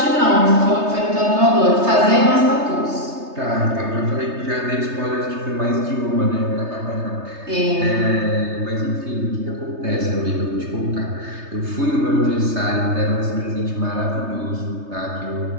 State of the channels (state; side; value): late; left; 3.3 ms